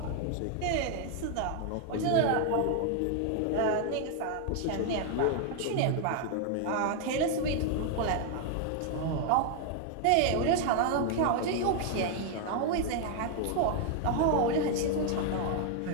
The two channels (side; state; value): both; different; correlation 0.00